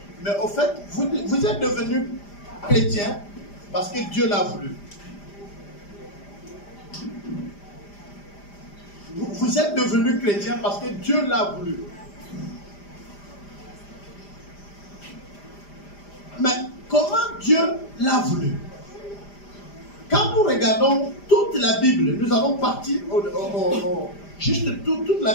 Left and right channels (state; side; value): late; right; 5.0 ms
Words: Mais au fait, vous êtes devenu chrétien parce que Dieu l'a voulu. Vous êtes devenu chrétien parce que Dieu l'a voulu. Mais comment Dieu l'a voulu? Quand nous regardons toute la Bible, nous allons partir juste toute la